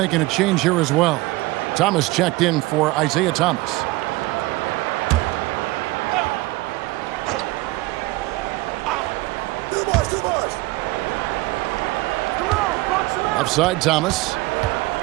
a change here as well. Thomas checked in for Isaiah Thomas. Offside Thomas.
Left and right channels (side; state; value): left; quieter; 20.5 dB